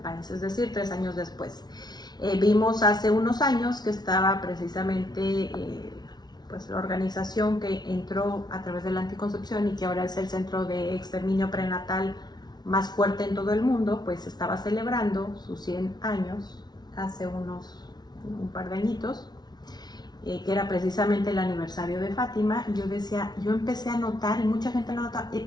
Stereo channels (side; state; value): right; late; 0.19 ms